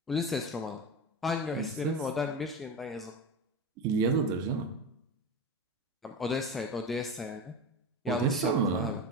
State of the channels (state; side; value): normal; both; correlation 0.23